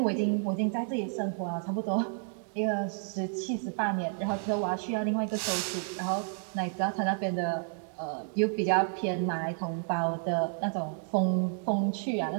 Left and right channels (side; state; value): left; silent; 57 dB below the other